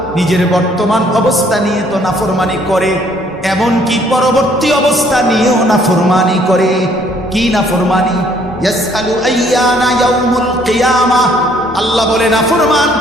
নিজের বর্তমান অবস্থা নিয়ে তো নাফরমানি করে, এমনকি পরবর্তী অবস্থা নিয়েও নাফরমানি করে। কি নাফরমানি? ইয়াসআলু আইয়ানা ইয়াউমুল কিয়ামাহ। আল্লাহ বলে নাফরমান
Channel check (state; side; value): normal; both; correlation 0.63